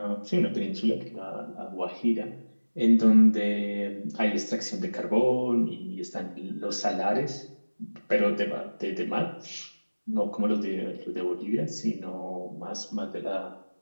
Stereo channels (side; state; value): both; inverted; correlation -1.00